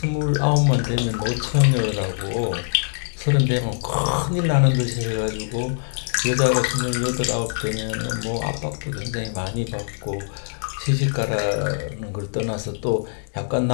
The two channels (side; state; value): right; silent; 60 dB below the other